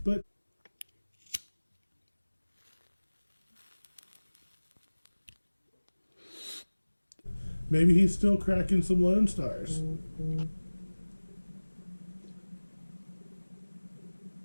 maybe he's still cracking some Lone Stars.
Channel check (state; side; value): inverted; both; correlation -1.00